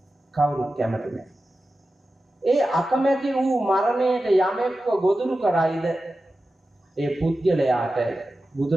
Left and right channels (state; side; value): normal; both; correlation 0.93